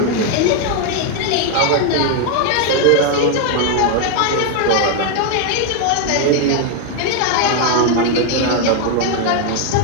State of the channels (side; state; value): both; different; correlation 0.00